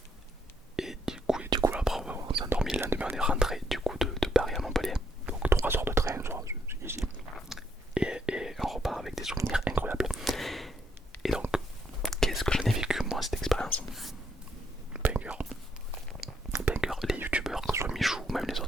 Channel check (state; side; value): normal; both; correlation 0.74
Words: du coup après on s'est endormi, le lendemain on est rentré du coup de Paris à Montpellier. Donc 3 heures de train, c'est easy. Et on repart avec des souvenirs incroyables. Et donc, qu'est-ce que j'en ai vécu moi cette expérience? Banger. Banger. Les youtubeurs, que ce soit Michou ou même les